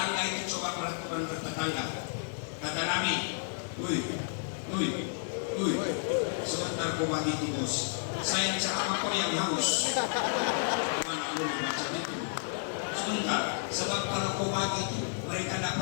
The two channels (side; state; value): right; silent; digital silence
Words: itu coba peraturan bertetangga. Kata Nabi, sebentar kau bagi itu bos. Saya cakap kau yang haus. Mana boleh macam itu? Sebentar, sebab kalau kau bagi itu mereka tidak